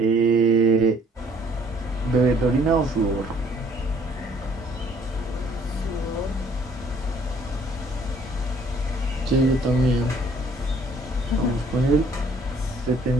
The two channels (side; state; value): both; normal; correlation 0.60